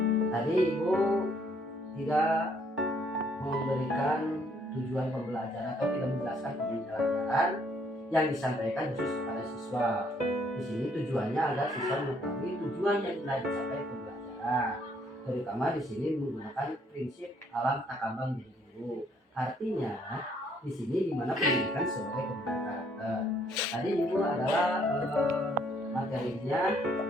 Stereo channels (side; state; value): both; normal; correlation 0.66